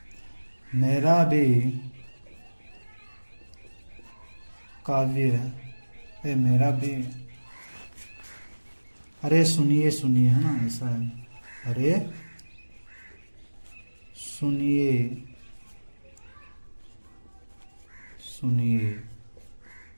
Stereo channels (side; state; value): both; inverted; correlation -1.00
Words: मेरा भी काव्य, मेरा भी, अरे सुनिए सुनिए, है ना, ऐसा है। अरे सुनिए सुनिए